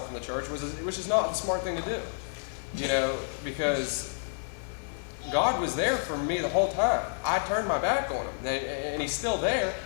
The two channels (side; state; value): right; silent; 58 dB below the other